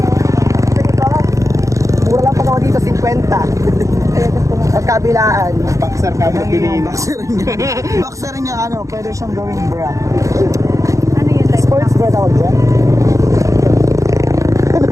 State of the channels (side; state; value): left; late; 0.15 ms